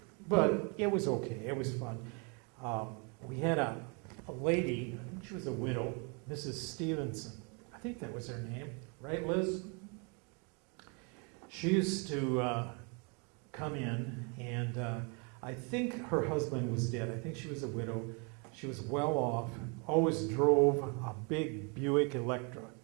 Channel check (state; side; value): quieter; left; 34.3 dB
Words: but it was okay. It was fun. We had a lady, I think she was a widow, Mrs. Stevenson. I think that was her name. Right, Liz? She used to come in, and I think her husband was dead. I think she was a widow. She was well off, always drove a big Buick Electra,